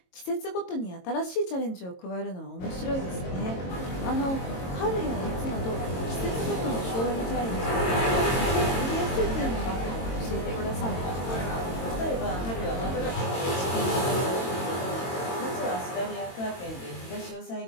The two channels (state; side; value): late; right; 22 ms